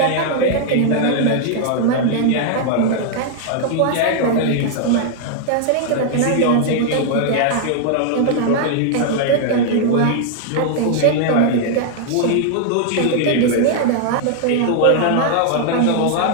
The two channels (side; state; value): both; different; correlation 0.00